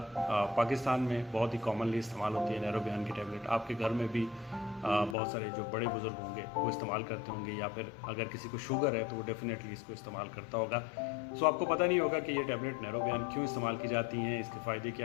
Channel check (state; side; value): drops out; right; at 5.2 s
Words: पाकिस्तान में बहुत ही कॉमनली इस्तेमाल होती है नैरोबियान की टैबलेट। आपके घर में भी बहुत सारे जो बड़े बुज़ुर्ग होंगे वो इस्तेमाल करते होंगे, या फिर अगर किसी को शुगर है तो वो डेफिनेटली इसको इस्तेमाल करता होगा। सो आपको पता नहीं होगा कि ये टैबलेट नैरोबियान क्यों इस्तेमाल की जाती हैं, इसके फ़ायदे